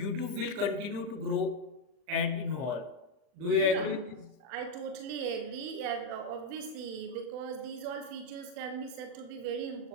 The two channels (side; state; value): left; late; 40 ms